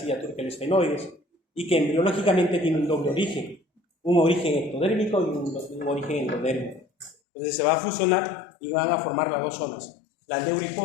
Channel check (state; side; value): drops out; right; at 7.2 s